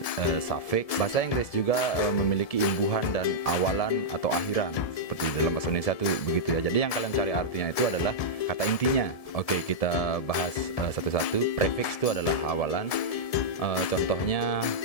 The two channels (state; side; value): late; right; 1.7 ms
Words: suffix. Bahasa Inggris juga memiliki imbuhan dan awalan atau akhiran. Seperti dalam bahasa Indonesia itu begitu ya. Jadi yang kalian cari artinya itu adalah kata intinya. Oke, kita bahas satu-satu. Prefix itu adalah awalan. Contohnya